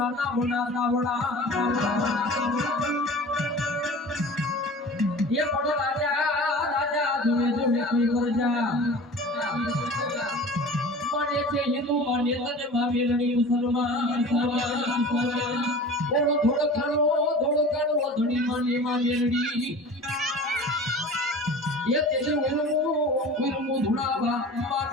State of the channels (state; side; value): normal; both; correlation 0.39